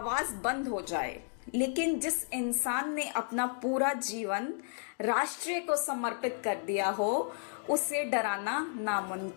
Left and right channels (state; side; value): silent; right; 56 dB below the other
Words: बंद हो जाए। लेकिन जिस इंसान ने अपना पूरा जीवन राष्ट्र को समर्पित कर दिया हो, उसे डराना